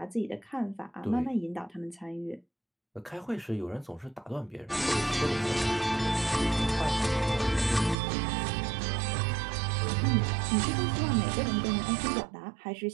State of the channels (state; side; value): drops out; left; at 8.0 s